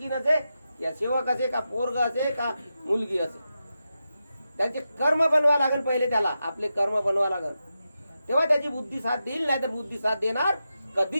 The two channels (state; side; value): inverted; both; correlation -0.89